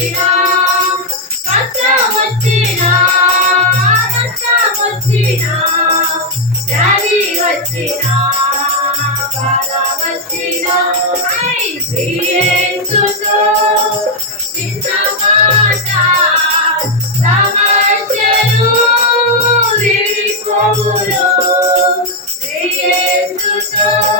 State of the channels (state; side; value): normal; both; correlation 0.00